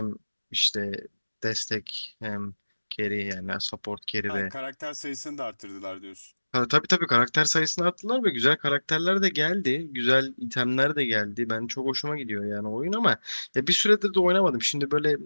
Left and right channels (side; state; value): both; inverted; correlation -1.00